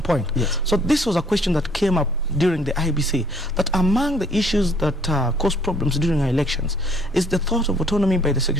point. So this was a question that came up during the IEBC, that among the issues that cause problems during our elections is the thought of autonomy by the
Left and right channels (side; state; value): both; normal; correlation 0.61